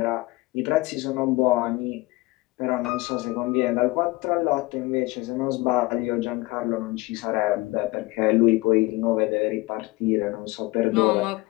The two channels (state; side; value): quieter; right; 21.6 dB